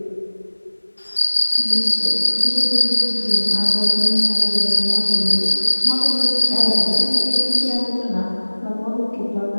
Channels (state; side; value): inverted; both; correlation -1.00